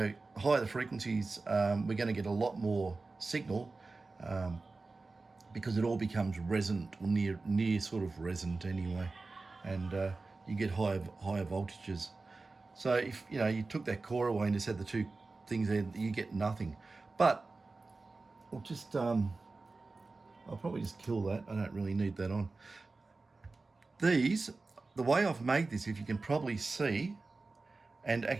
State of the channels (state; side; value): quieter; left; 3.7 dB